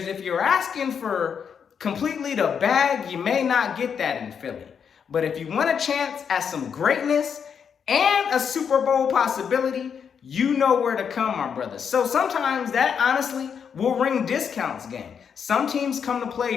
if you're asking for completely the bag, you may not get that in Philly. But if you want a chance at some greatness and a Super Bowl possibility, you know where to come, my brother. So sometimes that honestly will ring discounts, gang. Some teams come to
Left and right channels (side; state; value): right; quieter; 7.1 dB